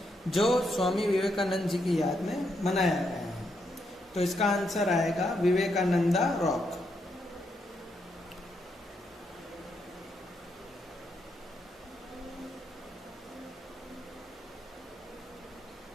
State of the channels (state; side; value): normal; both; correlation 0.79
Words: जो स्वामी विवेकानंद जी की याद में बनाया गया है. तो इसका आंसर आएगा Vivekananda rock.